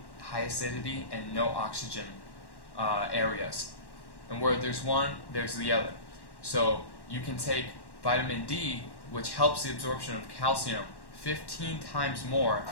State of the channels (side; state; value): right; late; 1.1 ms